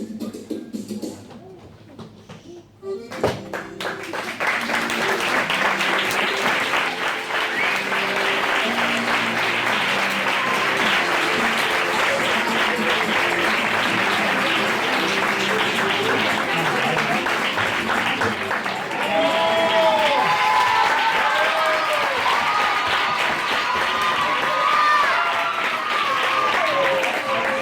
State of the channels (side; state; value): both; identical; correlation 1.00